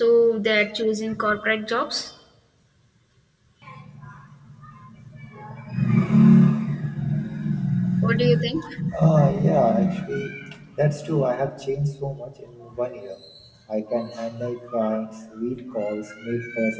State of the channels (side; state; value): both; identical; correlation 1.00